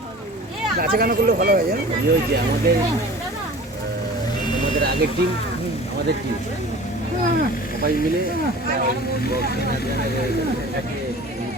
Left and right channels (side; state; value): both; normal; correlation 0.42